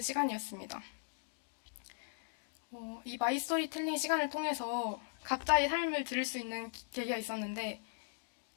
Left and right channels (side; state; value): right; silent; digital silence